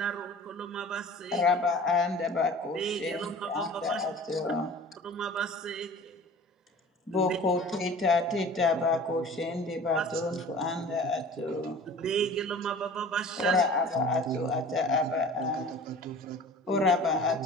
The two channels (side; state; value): both; normal; correlation 0.43